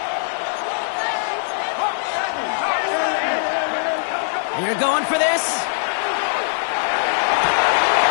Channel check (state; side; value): silent; right; digital silence